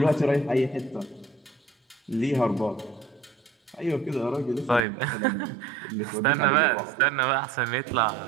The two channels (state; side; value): drops out; left; at 4.9 s